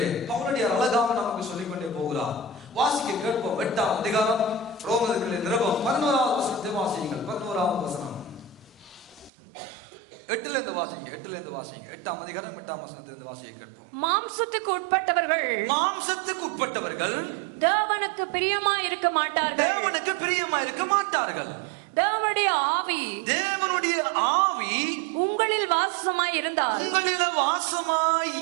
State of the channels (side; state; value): left; drops out; at 9.3 s